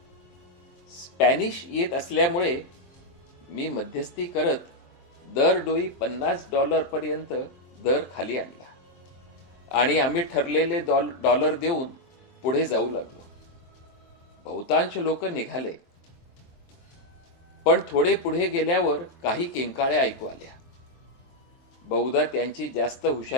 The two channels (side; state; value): right; late; 23 ms